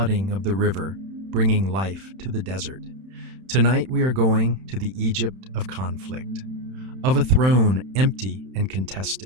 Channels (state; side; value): late; left; 31 ms